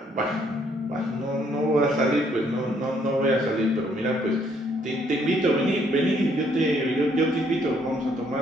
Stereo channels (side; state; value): both; normal; correlation 0.68